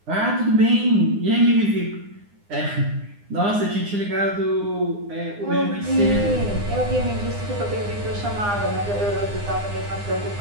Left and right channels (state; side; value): late; left; 9.8 ms